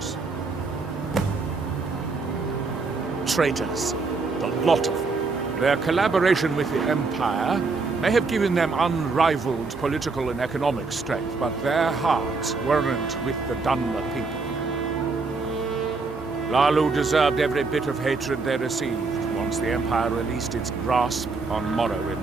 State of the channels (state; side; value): quieter; left; 4.1 dB